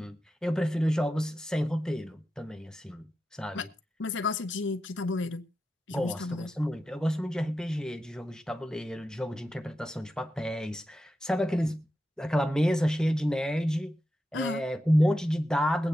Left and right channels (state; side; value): normal; both; correlation 0.90